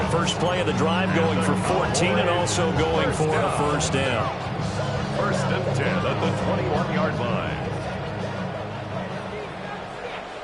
First play of the drive going for 14 and also going for a 1st down. 1st and 10 at the 21-yard line.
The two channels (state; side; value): identical; both; correlation 1.00